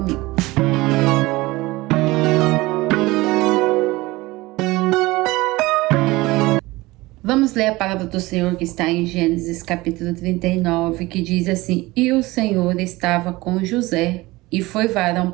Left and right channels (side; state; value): left; quieter; 20.5 dB